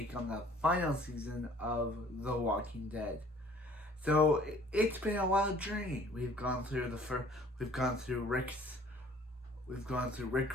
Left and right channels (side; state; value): both; normal; correlation 0.54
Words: on the final season of The Walking Dead. So it's been a wild journey. We've gone through Rick